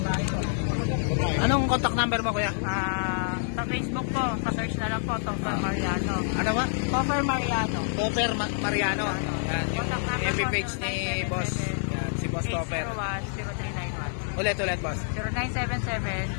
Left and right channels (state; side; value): silent; right; 60 dB below the other